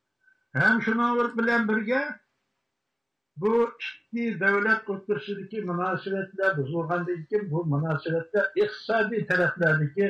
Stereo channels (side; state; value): both; identical; correlation 1.00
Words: Hem şunu bilen birge bu iki devlet oturuşundaki münasebetler bozulgandan keyin bu münasebetler iqtisadi